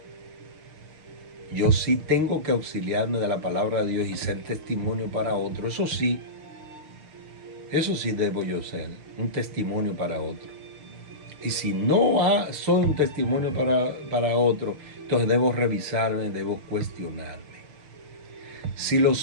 Yo sí tengo que auxiliarme de la palabra de Dios y ser testimonio para otro. Eso sí debo yo ser, un testimonio para otro. Y si no soy un testimonio para otro, entonces debo revisarme, debo cuestionarme. Si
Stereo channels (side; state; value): left; late; 6.4 ms